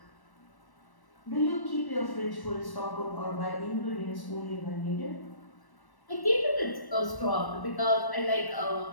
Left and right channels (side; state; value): right; late; 1.1 ms